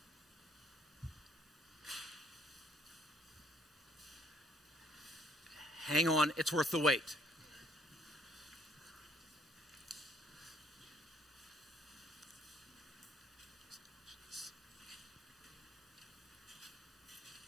Hang on, it's worth the wait.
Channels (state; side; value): normal; both; correlation 0.64